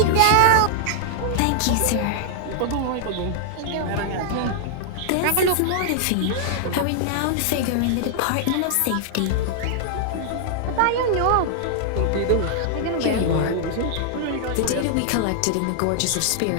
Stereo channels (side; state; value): both; different; correlation -0.01